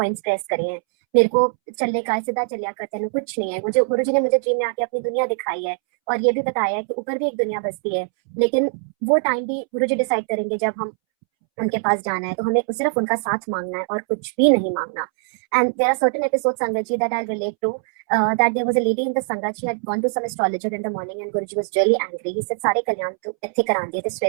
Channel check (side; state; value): left; silent; 64 dB below the other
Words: प्रेस करे हैं, मेरे को चलने का सीधा चलिया करते हैं कुछ नहीं है. मुझे गुरु जी ने मुझे ड्रीम में आके अपनी दुनिया दिखाई है, और ये भी बताया है कि ऊपर भी एक दुनिया बसती है, लेकिन वो टाइम भी गुरु जी डिसाइड करेंगे जब हम उनके पास जाना है, तो हमें सिर्फ उनका साथ मांगना है और कुछ भी नहीं मांगना. And there are certain episodes sangat ji that I relate to, that there was a lady in the संगत, she had gone to some astrologer in the morning and Guruji was really angry. He said सारे कल्याण तू इत्थे करा दिए थे,